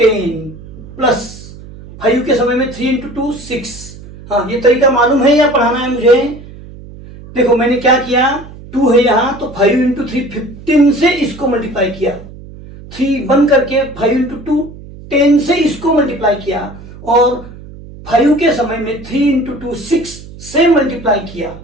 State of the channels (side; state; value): right; noise; hum, 17 dB below the sound